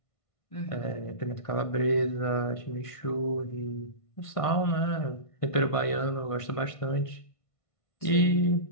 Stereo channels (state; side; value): late; right; 1.5 ms